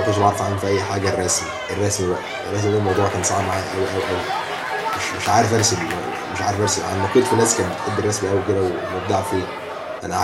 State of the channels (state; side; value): identical; both; correlation 1.00